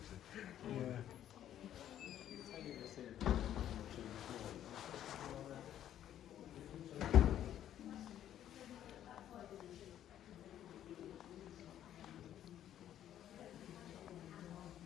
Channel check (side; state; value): right; quieter; 11.1 dB